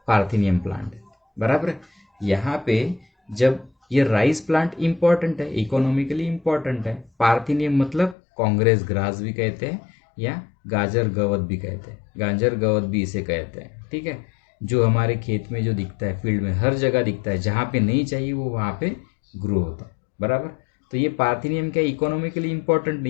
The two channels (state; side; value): drops out; right; at 8.2 s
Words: पार्थेनियम प्लांट है बराबर। यहाँ पे जब ये राइस प्लांट इंपॉर्टेंट है, इकोनॉमिकली इंपॉर्टेंट है, पार्थेनियम मतलब कांग्रेस ग्रास भी कहते हैं या गाजर गवत भी कहते हैं, गाजर गवत भी इसे कहते हैं, ठीक है। जो हमारे खेत में जो दिखता है, फील्ड में हर जगह दिखता है, जहाँ पे नहीं चाहिए वो वहाँ पे ग्रो होता है बराबर। तो ये पार्थेनियम क्या इकोनॉमिकली इंपॉर्टेंट